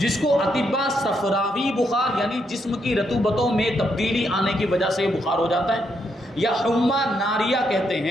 کو اطباء صفراوی بخار یعنی جسم کی رطوبتوں میں تبدیلی آنے کی وجہ سے بخار ہو جاتا ہے، یا حمہ ناریہ کہتے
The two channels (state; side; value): normal; both; correlation 0.78